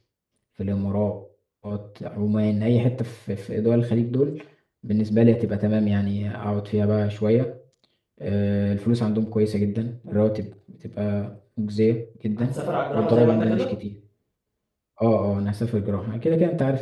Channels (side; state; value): both; identical; correlation 1.00